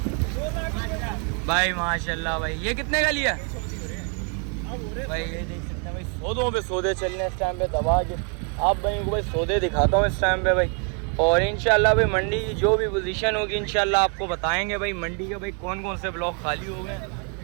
भाई माशाल्लाह। भाई ये कितने का लिया? भाई ये देख सकते हैं भाई, सौदों पे सौदे चल रहे हैं इस टाइम पे दबा के। आप भाइयों को भाई सौदे दिखाता हूँ इस टाइम पे भाई। और इंशाल्लाह भाई मंडी की जो भी पोजीशन होगी इंशाल्लाह आपको बताएंगे। भाई मंडी के भाई कौन कौन से ब्लॉक खाली हो गए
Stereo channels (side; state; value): left; quieter; 38.8 dB